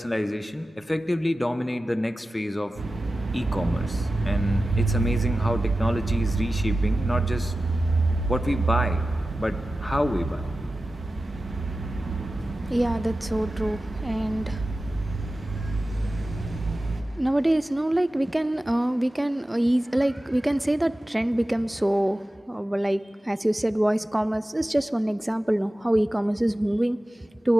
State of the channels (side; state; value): both; normal; correlation 0.95